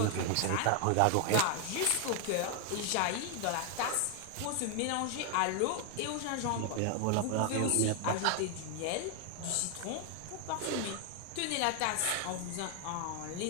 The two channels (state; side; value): different; both; correlation 0.00